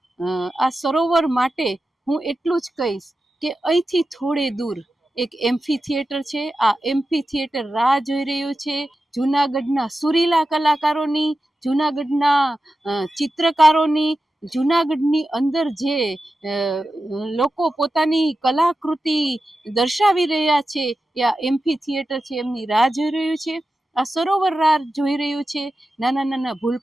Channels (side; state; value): both; normal; correlation 0.92